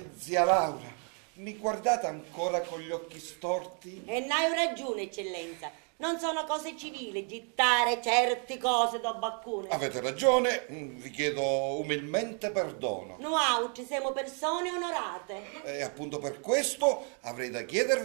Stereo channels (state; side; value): quieter; left; 39.4 dB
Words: Zia Laura, mi guardate ancora con gli occhi storti? E n'hai ragione, eccellenza. Non sono cose civili gittare certe cose da baccone. Avete ragione, vi chiedo umilmente perdono. Noi siamo persone onorate. E appunto per questo avrei da